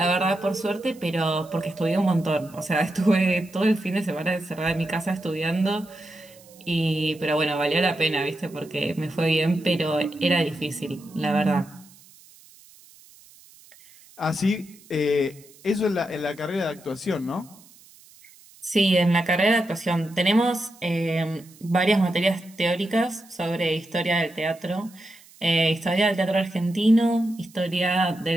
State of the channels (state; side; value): noise; right; hiss, 25 dB below the sound